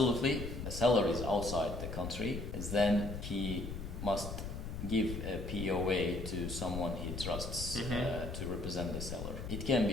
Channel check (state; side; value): noise; left; rumble, 6 dB below the sound